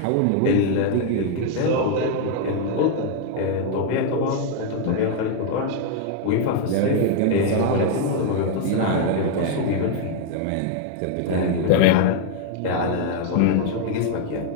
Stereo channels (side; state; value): both; different; correlation 0.00